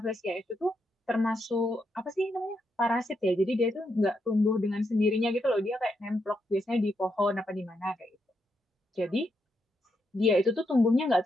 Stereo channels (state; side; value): normal; both; correlation 0.81